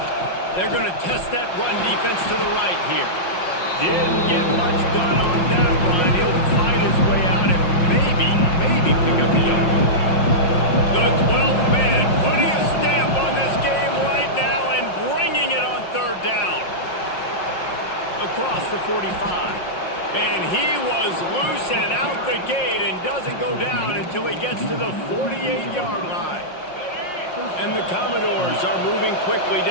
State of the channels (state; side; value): late; right; 5.6 ms